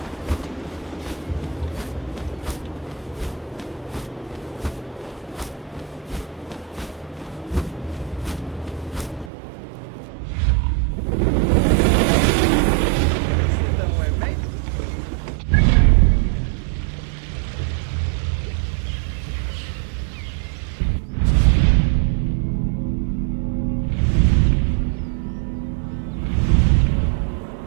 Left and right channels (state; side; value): drops out; left; at 9.3 s